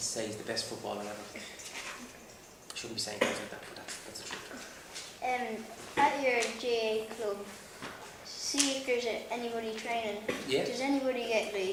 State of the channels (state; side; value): identical; both; correlation 1.00